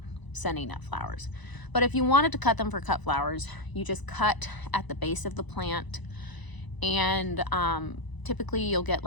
sending up flowers. But if you wanted to cut them for cut flowers, you just cut at the base of the plant, and typically you'll get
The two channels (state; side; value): late; right; 1.0 ms